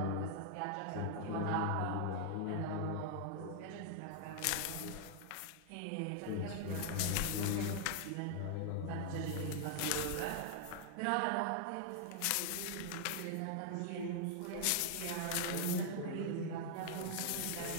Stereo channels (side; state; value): both; different; correlation 0.00